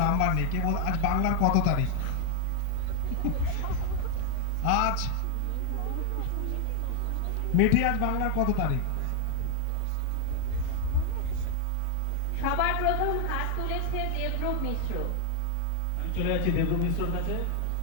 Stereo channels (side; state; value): both; different; correlation 0.00